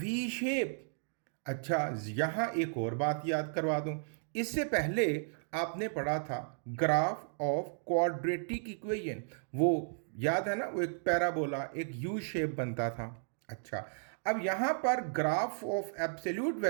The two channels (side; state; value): left; silent; digital silence